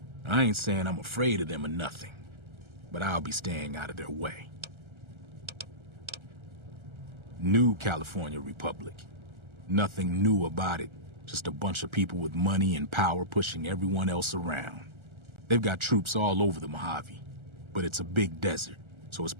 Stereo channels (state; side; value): late; left; 1.3 ms